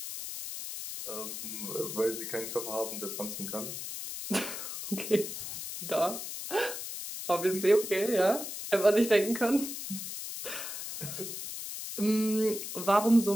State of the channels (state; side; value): noise; left; hiss, 7 dB below the sound